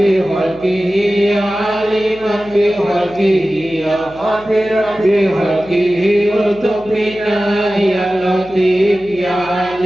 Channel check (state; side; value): noise; left; hum, 22 dB below the sound